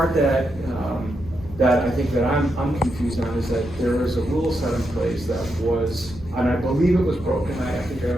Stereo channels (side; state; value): left; noise; hum, 17 dB below the sound